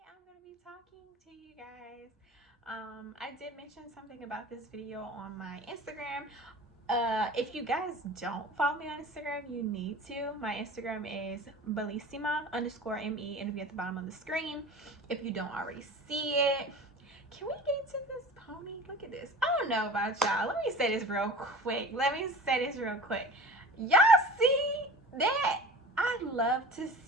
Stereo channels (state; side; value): normal; both; correlation 0.39